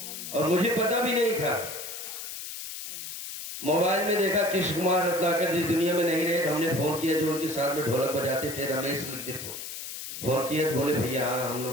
और मुझे पता भी नहीं था। मोबाइल में देखा कृष्ण कुमार रत्नाकर जिस दुनिया में नहीं रहे, हमने फोन किया, जो उनके साथ में ढोलक बजाते थे, रमेश लिखते को फोन किया, बोले भैया हाँ हम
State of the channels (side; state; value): left; noise; hiss, 8 dB below the sound